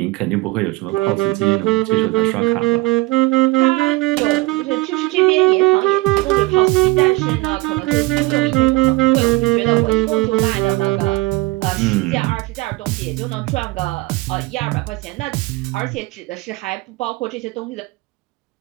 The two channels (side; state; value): left; quieter; 20.9 dB